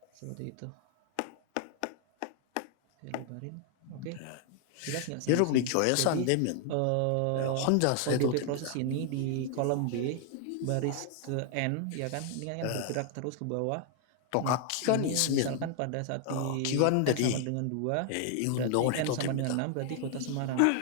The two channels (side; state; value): both; different; correlation 0.00